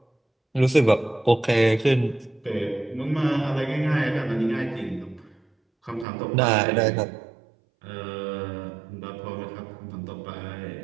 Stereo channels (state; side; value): drops out; left; at 6.1 s